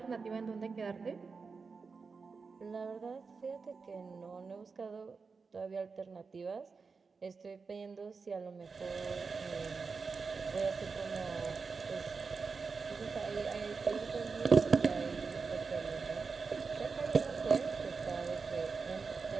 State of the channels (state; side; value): quieter; left; 4.8 dB